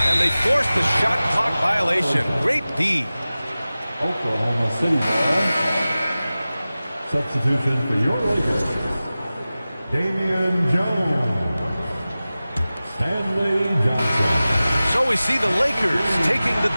And they forced the shot clock violation. Great D. Oklahoma City ball. Substitution for your Lakers. Damian Jones. Stanley Johnson. So we see the Lakers taking the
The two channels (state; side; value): inverted; both; correlation -0.96